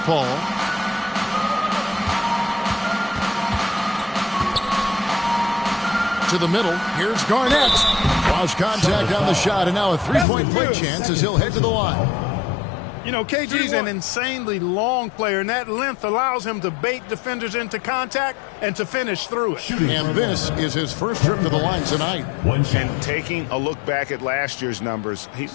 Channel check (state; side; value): drops out; right; at 10.2 s